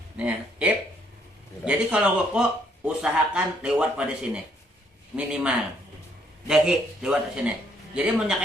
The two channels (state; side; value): normal; both; correlation 0.68